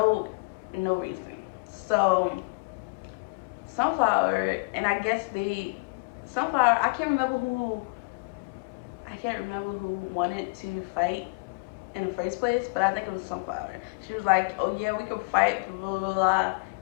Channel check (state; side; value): quieter; right; 32.8 dB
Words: no reason. So Sunflower, and I guess Sunflower, I can't remember who wanted to fight in the first place, but I think it was Sunflower. She was like, "Oh yeah, we could fight, blah blah blah,"